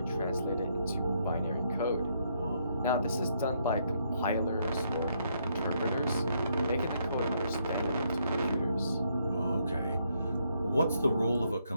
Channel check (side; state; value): both; inverted; correlation -0.74